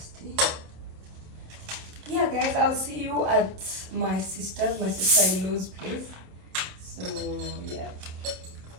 Yeah guys, I'll see you at my sister-in-law's place. So yeah,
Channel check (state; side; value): late; left; 27 ms